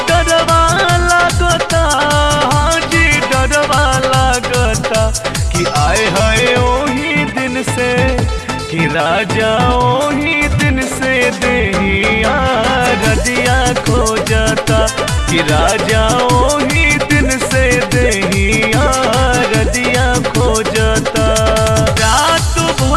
डरवा लागता हाजी डरवा लागता कि आए हाय ओही दिन से कि राजा ओही दिन से देहिया रदिया खोजता कि राजा ओही दिन से देहिया रदिया खोजता रात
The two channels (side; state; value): both; identical; correlation 1.00